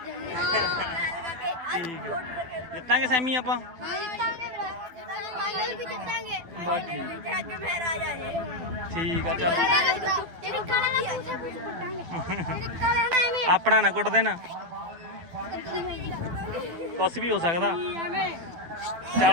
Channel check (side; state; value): left; late; 12 ms